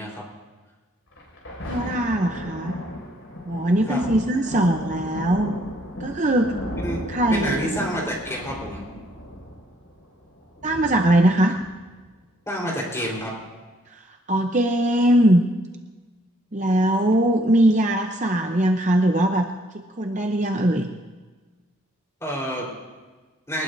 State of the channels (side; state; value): both; normal; correlation 0.67